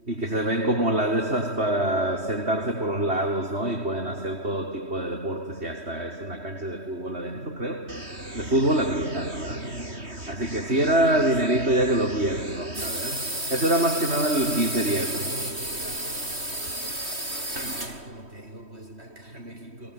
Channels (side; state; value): left; late; 3.1 ms